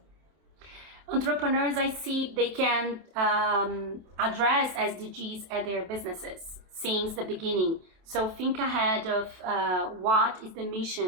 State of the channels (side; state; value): left; late; 27 ms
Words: Entrepreneurs, I see they can address SDGs at their businesses since the beginning. So think ahead of what is the